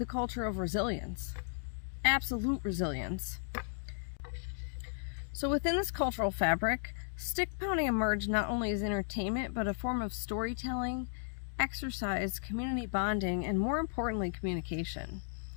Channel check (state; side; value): silent; right; digital silence